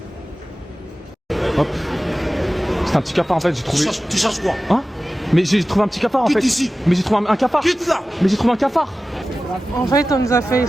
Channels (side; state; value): both; normal; correlation 0.95